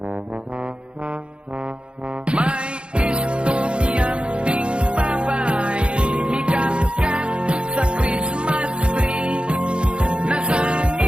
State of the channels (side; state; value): left; late; 0.056 ms